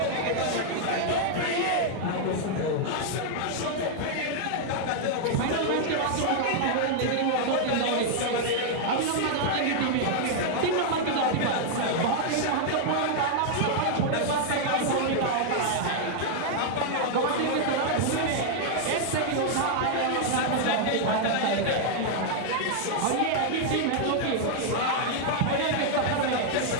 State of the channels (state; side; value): different; both; correlation -0.01